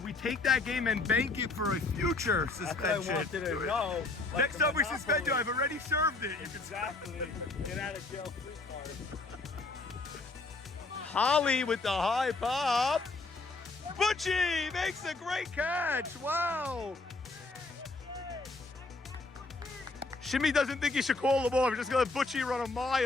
we take that game and bank it for a future suspension? I wanted to know. Next time we suspend you, I've already served it. You can Exactly. Get out of jail free card. Holly with the high pop. Butchie makes a great catch. Wow. Shimmy doesn't think he should call the ball. We're just going to let Butchie run a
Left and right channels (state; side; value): quieter; right; 3.5 dB